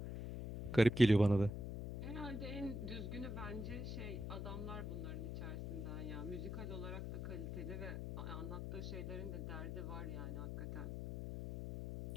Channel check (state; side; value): noise; left; hum, 4 dB below the sound